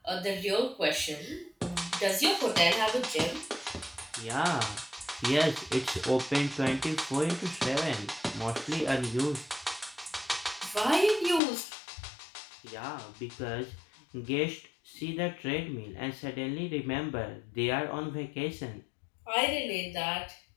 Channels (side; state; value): right; drops out; at 11.4 s